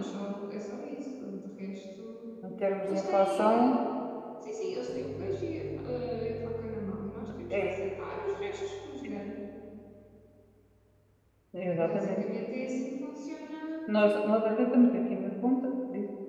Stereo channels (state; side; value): identical; both; correlation 1.00